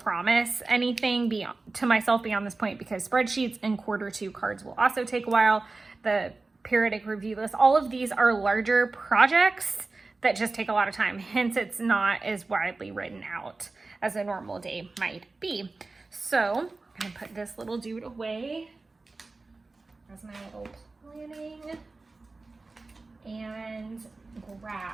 anything to myself beyond this point, because spreadsheets and Q2 cards will also take a while. The periodic review list, all of these are larger projects that just take a lot of time. Hence, it's not as widely written out as a normal day might be. So I'm gonna put this little dude away as my little planning, and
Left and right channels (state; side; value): quieter; left; 3.5 dB